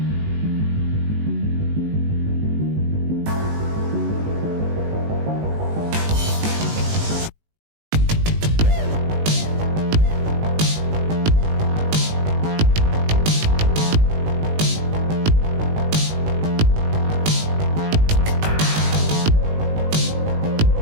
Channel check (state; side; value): late; left; 19 ms